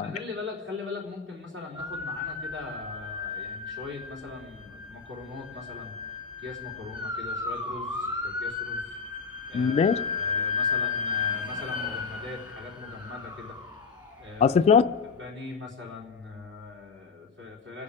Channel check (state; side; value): quieter; right; 5.3 dB